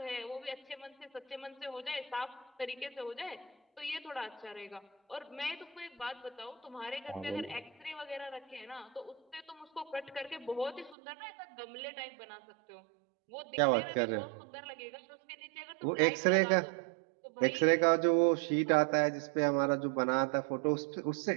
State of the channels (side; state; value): left; drops out; at 11.0 s